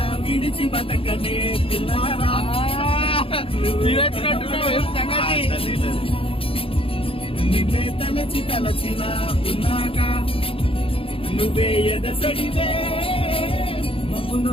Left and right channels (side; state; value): right; late; 0.27 ms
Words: విడిచి బతకనే పిల్లారా. నిన్నే తలచి తలచిలా ఉన్నాగా, నువ్వే ఎదసడివే.